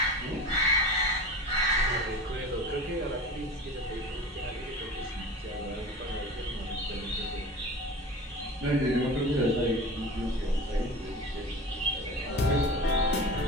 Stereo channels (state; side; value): normal; both; correlation 0.34